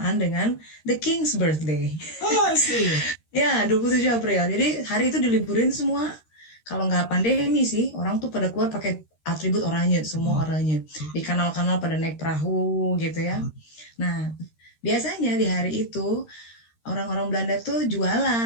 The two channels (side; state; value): right; late; 13 ms